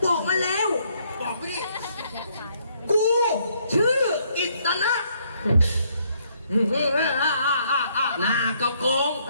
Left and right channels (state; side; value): inverted; both; correlation -0.69